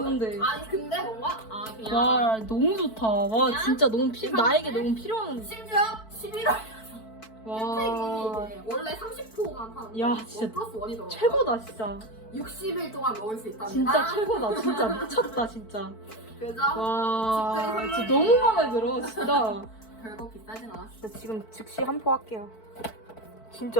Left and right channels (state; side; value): late; right; 4.5 ms